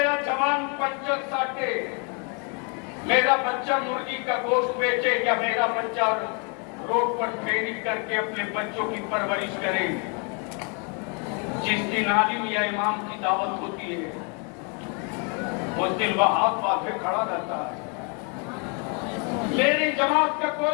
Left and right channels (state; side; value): quieter; right; 36.7 dB